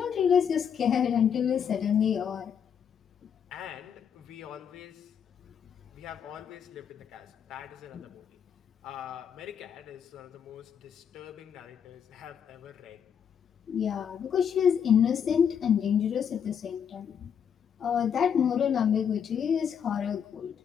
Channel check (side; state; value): right; quieter; 7.8 dB